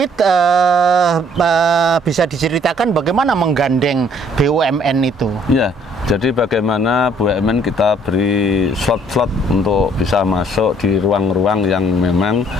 bisa diceritakan bagaimana menggandeng BUMN itu? Jadi bagaimana BUMN kita beri slot-slot untuk bisa masuk di ruang-ruang yang memang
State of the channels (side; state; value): both; normal; correlation 0.62